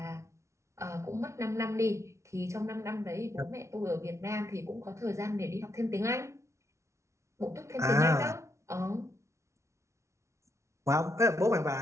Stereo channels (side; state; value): left; late; 0.14 ms